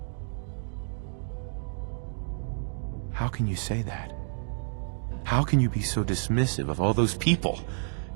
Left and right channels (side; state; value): left; silent; digital silence